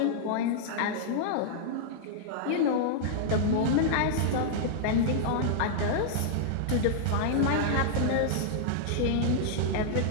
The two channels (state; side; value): different; both; correlation -0.01